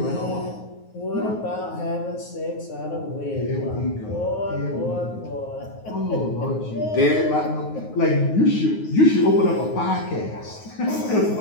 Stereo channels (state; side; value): late; right; 9.5 ms